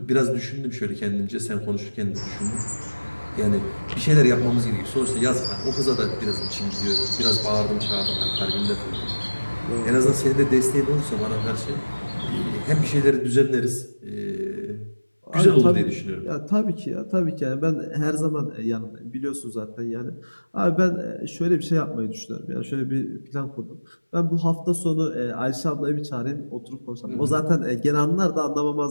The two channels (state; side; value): inverted; both; correlation -1.00